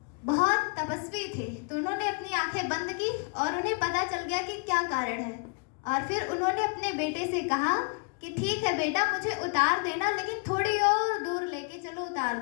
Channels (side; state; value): right; quieter; 34.7 dB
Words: बहुत तपस्वी थे, तो उन्होंने अपनी आंखें बंद की और उन्हें पता चल गया कि क्या कारण है। और फिर उन्होंने अपने बेटे से कहा कि ठीक है बेटा, मुझे उतार देना, लेकिन थोड़ी और दूर लेके चलो, उतार